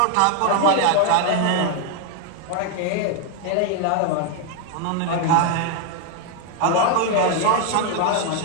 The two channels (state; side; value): different; both; correlation 0.01